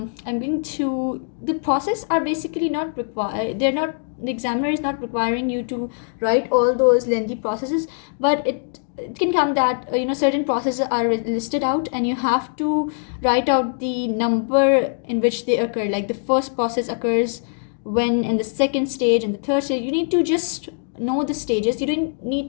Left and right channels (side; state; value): right; silent; digital silence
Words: process are basically not required. The examiner is not requiring you to write all those lengthy processes, but it can come that certain processes are listed out, and you have to write out the number in which they occur. Like the first process occurs when, in the second stage, and the third stage. You need to just know the stages. You don't need